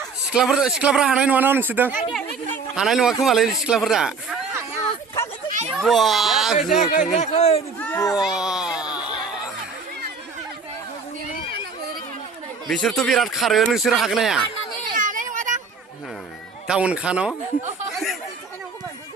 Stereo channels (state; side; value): quieter; left; 4.7 dB